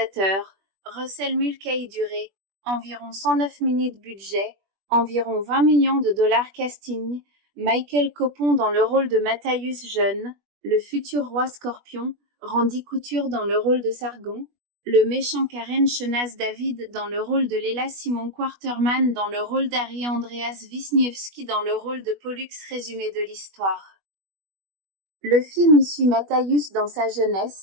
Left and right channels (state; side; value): late; left; 21 ms